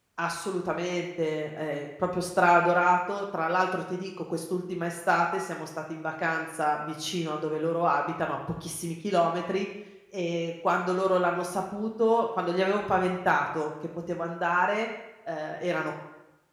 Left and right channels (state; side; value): identical; both; correlation 1.00